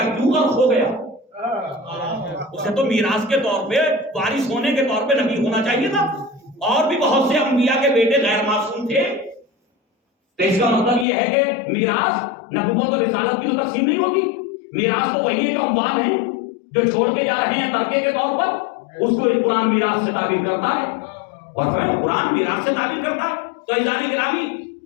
کیوں غرق ہو گیا؟ اسے تو میراث کے طور پہ، وارث ہونے کے طور پہ نبی ہونا چاہیے تھا. اور بھی بہت سے انبیاء کے بیٹے غیر معصوم تھے. تو اس کا مطلب یہ ہے کہ میراث نبوت اور رسالت کی تو تقسیم نہیں ہوتی. میراث تو وہی ہے جو اموال ہیں، جو چھوڑ کے جا رہے ہیں ترکے کے طور پر، اس کو قرآن میراث سے تعبیر کرتا ہے. اور قرآن میراث سے تعبیر کرتا ہے. تو عزیزان گرامی،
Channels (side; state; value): right; drops out; at 11.1 s